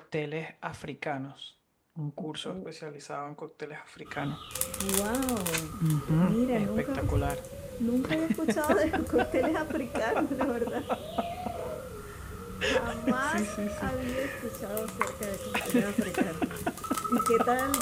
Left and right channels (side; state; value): both; identical; correlation 1.00